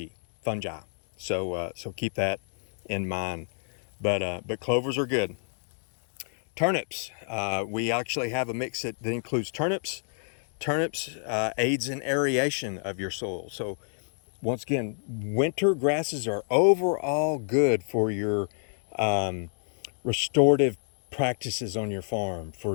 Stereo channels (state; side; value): silent; right; digital silence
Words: So keep that in mind. But clovers are good. Turnips. We actually have a mix that includes turnips. Turnips aids in aeration of your soil. So once again, winter grasses are overall good for your restorative practices on your farm,